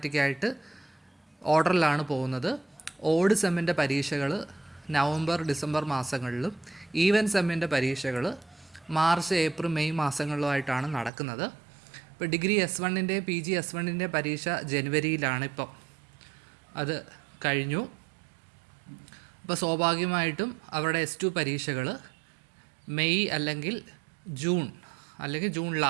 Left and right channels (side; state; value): left; drops out; at 11.1 s